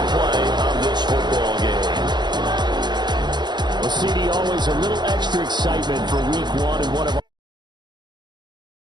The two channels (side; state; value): left; late; 0.21 ms